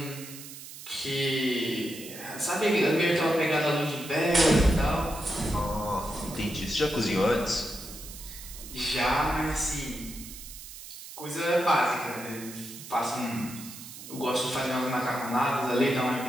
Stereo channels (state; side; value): noise; right; hiss, 13 dB below the sound